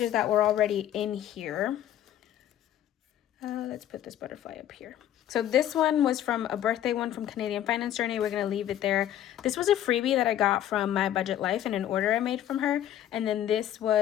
that were already in here. Let's put this butterfly up here. So this one was from a birthday one from Canadian Finance Journey. We're going to leave it there. This was a freebie that I got from My Budget Life in an order I made from her. And then this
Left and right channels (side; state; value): right; quieter; 11.6 dB